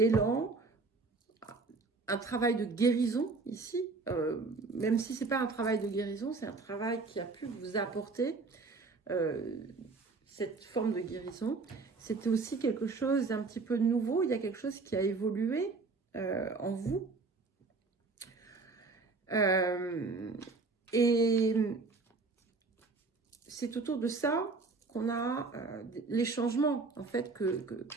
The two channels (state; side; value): quieter; left; 4.0 dB